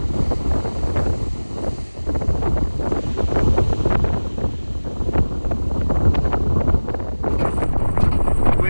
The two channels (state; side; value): inverted; both; correlation -1.00